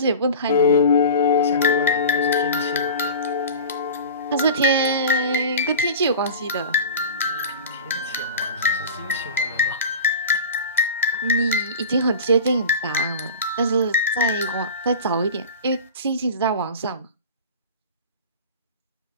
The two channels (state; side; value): inverted; both; correlation -0.34